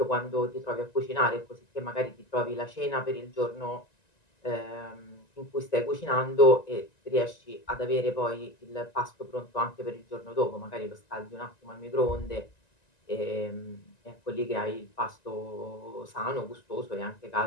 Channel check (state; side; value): late; right; 1.9 ms